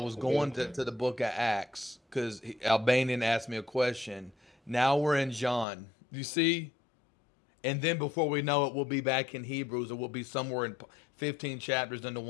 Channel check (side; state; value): right; drops out; at 5.7 s